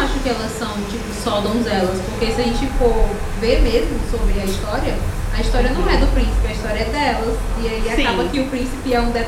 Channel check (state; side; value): identical; both; correlation 1.00